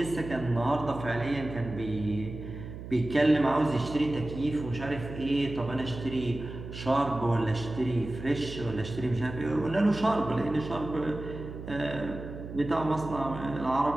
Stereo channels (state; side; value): noise; right; hum, 11 dB below the sound